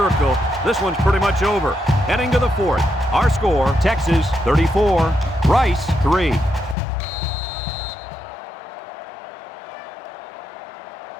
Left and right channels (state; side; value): drops out; right; at 6.8 s